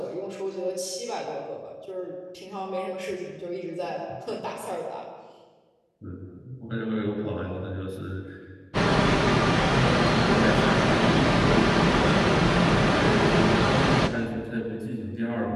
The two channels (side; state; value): both; identical; correlation 1.00